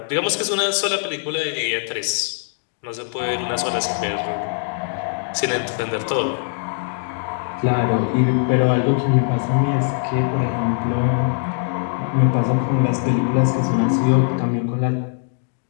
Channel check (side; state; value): right; silent; digital silence